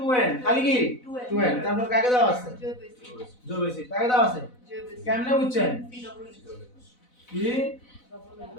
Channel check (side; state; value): right; late; 4.0 ms